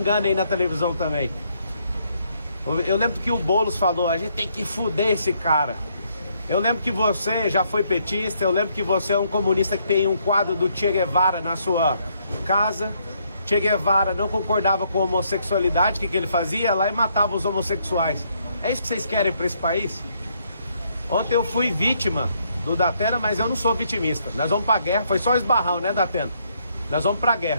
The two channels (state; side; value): inverted; both; correlation -0.72